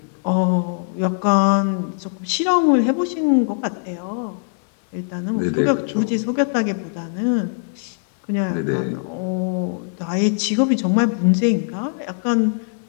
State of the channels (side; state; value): right; silent; digital silence